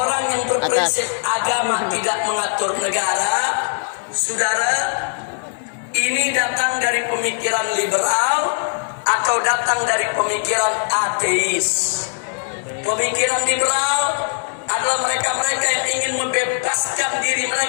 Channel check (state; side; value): silent; right; digital silence